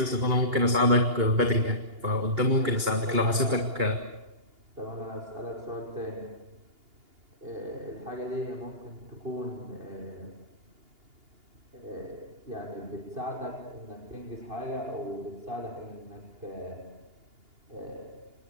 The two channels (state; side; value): late; left; 2.8 ms